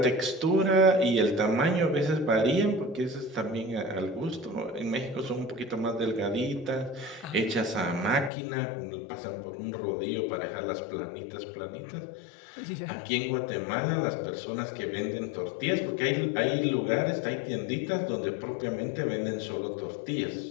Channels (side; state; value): right; drops out; at 8.3 s